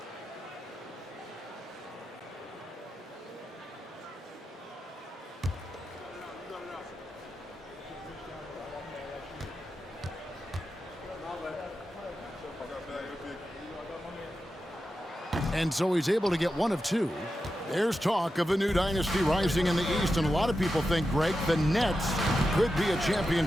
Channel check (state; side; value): normal; both; correlation 0.90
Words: And so he's able to get one of 2. There's talk of a new dynasty rising in the East, and a lot of people think, Greg, the Nets could be a